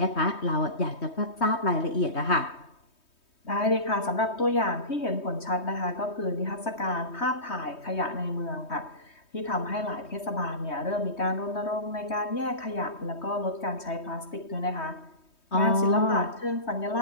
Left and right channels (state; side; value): late; right; 3.2 ms